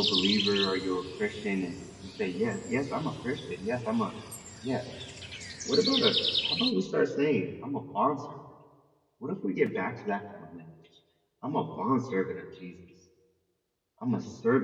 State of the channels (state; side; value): identical; both; correlation 1.00